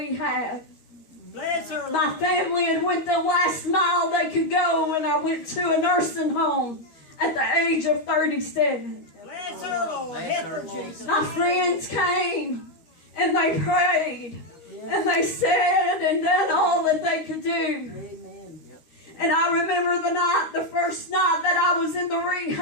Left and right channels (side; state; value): right; late; 13 ms